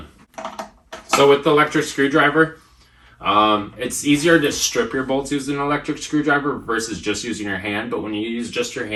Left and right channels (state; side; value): identical; both; correlation 1.00